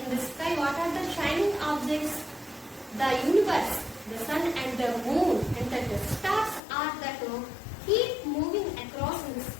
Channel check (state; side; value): drops out; right; at 6.6 s